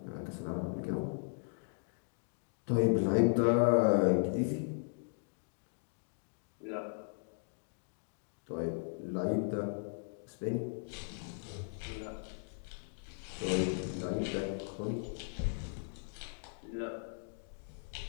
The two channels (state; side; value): silent; right; digital silence